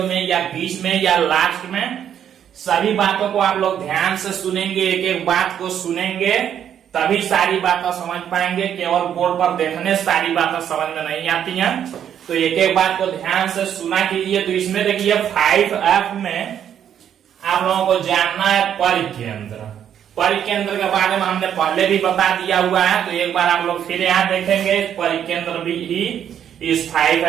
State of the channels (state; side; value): quieter; left; 9.4 dB